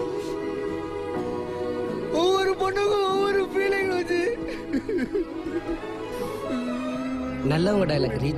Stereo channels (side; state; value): both; identical; correlation 1.00